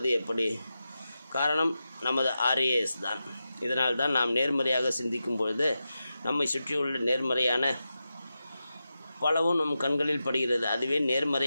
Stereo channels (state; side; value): inverted; both; correlation -0.90